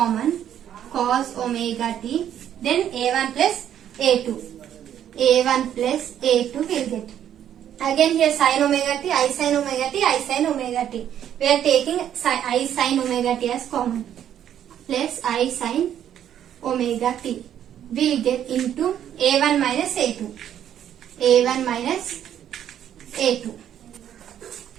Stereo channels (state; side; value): quieter; left; 10.2 dB